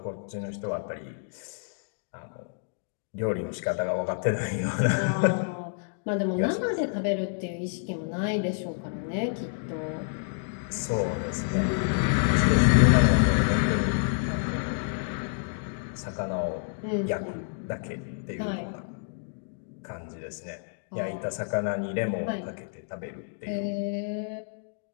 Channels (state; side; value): silent; right; digital silence